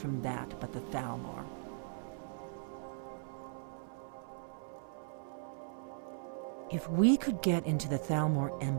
that but the Talmor? If we could get into the Talmor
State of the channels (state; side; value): silent; left; 52 dB below the other